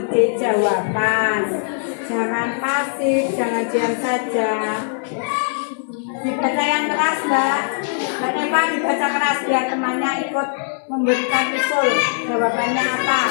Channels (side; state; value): right; silent; digital silence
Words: ide jawaban. Jangan pasif, jangan diam saja. Dibaca yang keras, Mbak. Mbak Neva dibaca keras biar temannya ikut memberikan usul. Jawabannya apa?